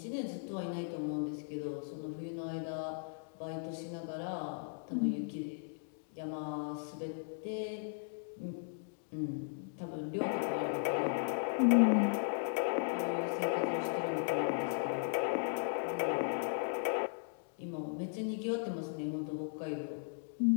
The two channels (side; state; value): right; silent; digital silence